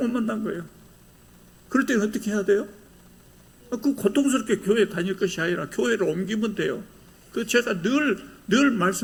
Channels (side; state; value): both; identical; correlation 1.00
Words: 만난 거예요. 그럴 때는 어떻게 해야 돼요? 그 고통스럽게 교회 다닐 것이 아니라 교회를 옮기면 돼요. 그 제가 늘